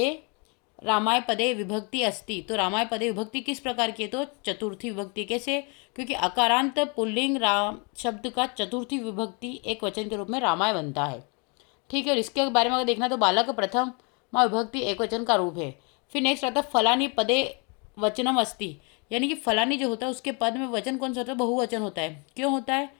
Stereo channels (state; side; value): quieter; right; 33.5 dB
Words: विभक्ति अस्ति। तो रामाय पदे विभक्ति किस प्रकार की है, तो चतुर्थी विभक्ति। कैसे, क्योंकि अकारांत पुल्लिंग राम शब्द का चतुर्थी विभक्ति एक वचन के रूप में रामाय बनता है। ठीक है, और इसके बारे में अगर देखना तो बालक प्रथम माँ विभक्ति एक वचन का रूप है। फिर नेक्स्ट आता है फलानी पदे वचनम अस्ति, यानी कि फलानी जो होता है उसके पद में वचन कौन सा होता है, बहुवचन होता है। क्यों होता है,